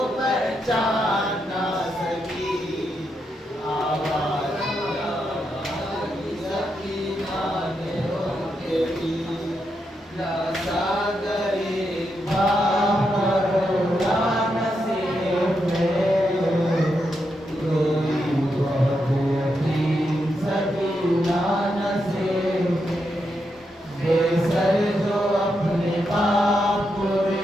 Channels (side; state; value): both; normal; correlation 0.83